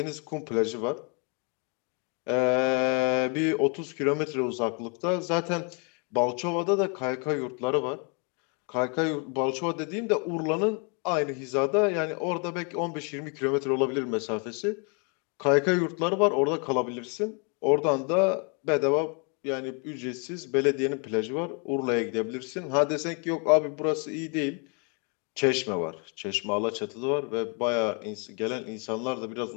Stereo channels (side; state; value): right; quieter; 36.1 dB